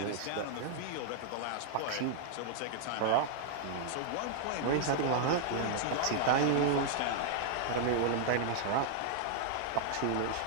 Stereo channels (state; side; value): different; both; correlation -0.01